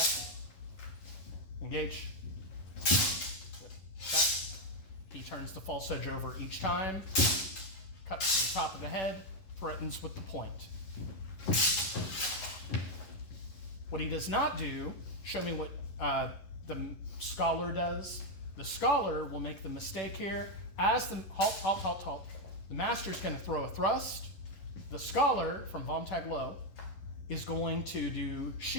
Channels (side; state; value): right; late; 11 ms